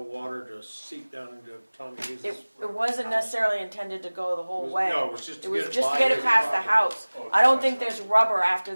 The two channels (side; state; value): both; inverted; correlation -1.00